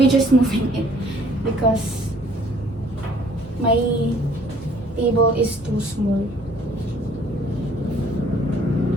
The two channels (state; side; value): normal; both; correlation 0.58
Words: just moving it because my table is too small.